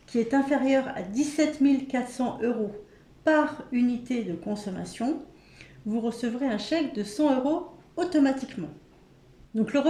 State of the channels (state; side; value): identical; both; correlation 1.00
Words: qui est inférieur à 17 400 € par unité de consommation, vous recevrez un chèque de 100 € automatiquement. Donc le